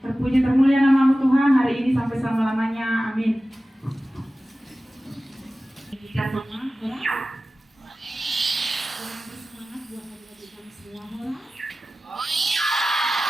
termulia nama-Mu Tuhan, hari ini sampai selama-lamanya. Amin. Kita semua horas. Kurang bersemangat buat adik-adik kami semua horas.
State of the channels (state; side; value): normal; both; correlation 0.95